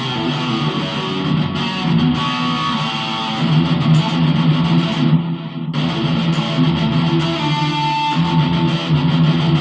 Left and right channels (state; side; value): identical; both; correlation 1.00